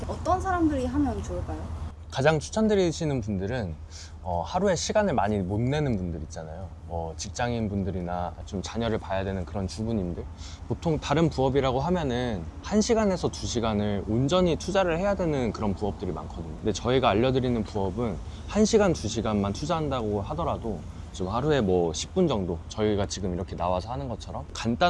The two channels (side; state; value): both; identical; correlation 1.00